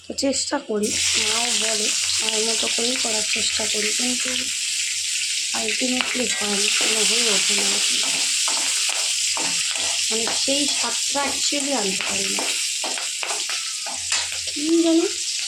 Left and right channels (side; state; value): both; identical; correlation 1.00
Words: তো চেষ্টা করি, মাও বলে মায়ের মতো করেই করার চেষ্টা করি, কিন্তু আলটিমেটলি হয় না, কোনো হয়ে ওঠে না। মানে সেই স্বাদটা অ্যাকচুয়ালি আনতে পারি না, কী জানি।